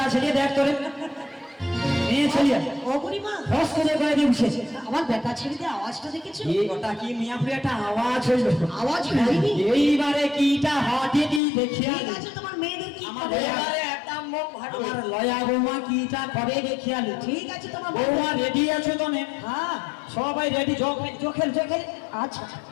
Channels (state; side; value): drops out; right; at 11.4 s